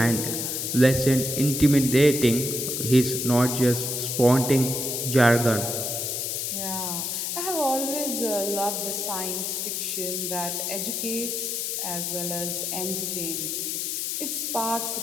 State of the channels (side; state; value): left; noise; hiss, 2 dB below the sound